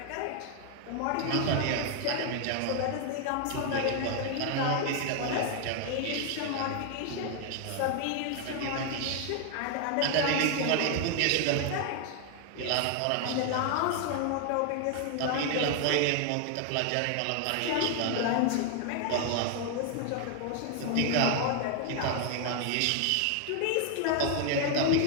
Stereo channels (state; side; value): different; both; correlation 0.00